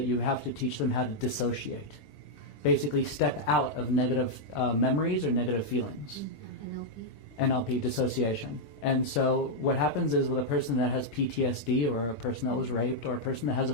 you have to teach them how to dissociate. Basically step out of negative memories or negative feelings. NLP, dissociation. And so what happens is with a person that has PTSD, or a person that was raped, or a person that has a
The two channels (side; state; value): right; late; 20 ms